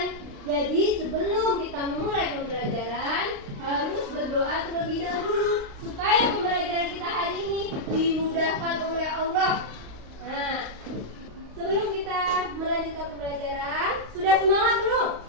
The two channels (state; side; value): late; left; 35 ms